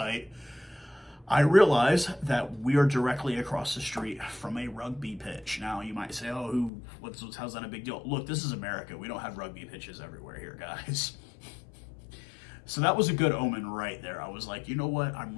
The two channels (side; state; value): right; drops out; at 6.7 s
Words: I realize that we are directly across the street from a rugby pitch. Now, you might say, oh, how's that a big deal? Look, this is America. We don't have rugby pitches everywhere here, guys. So that was a good omen right there. I was like, you know what?